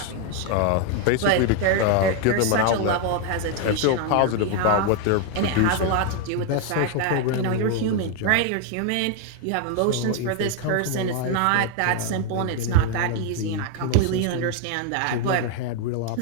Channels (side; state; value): both; different; correlation 0.01